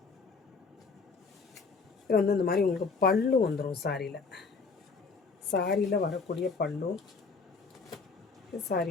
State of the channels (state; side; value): quieter; right; 4.7 dB